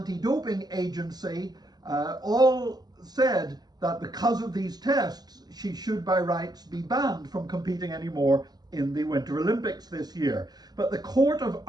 Agency all said that because of these tests, she should by rights be banned from competing anymore in the Winter Olympics this year. But the Court of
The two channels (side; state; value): left; late; 0.20 ms